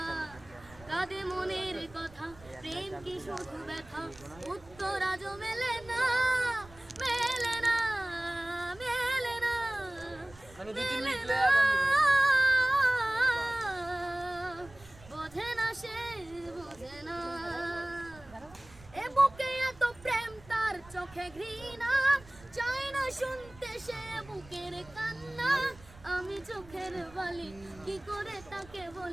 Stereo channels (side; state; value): right; noise; rumble, 22 dB below the sound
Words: কাঁদে মনের কথা, প্রেম কি শুধু ব্যথা, উত্তর আজও মেলে না। বোঝে না সে বোঝে না। এ বুকে এত প্রেম, তার চোখে ঘৃণা, চাই না শুনতে সে বুকের কান্না। আমি চোখের বলি কি করে তাকে